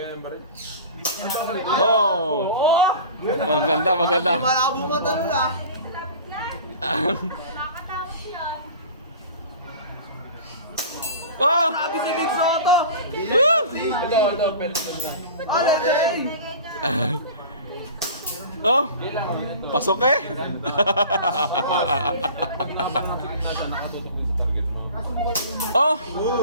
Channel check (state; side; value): inverted; both; correlation -0.39